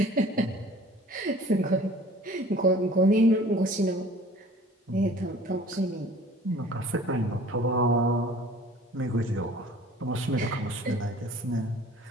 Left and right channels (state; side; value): normal; both; correlation 0.48